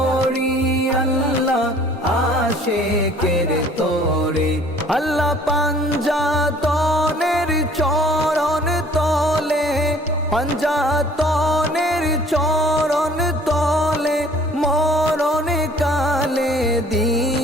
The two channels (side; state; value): both; normal; correlation 0.54